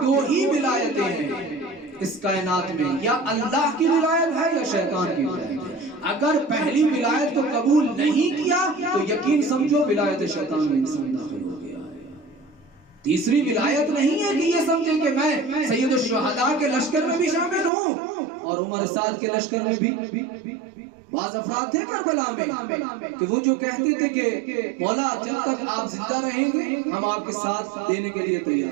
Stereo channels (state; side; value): drops out; left; at 17.7 s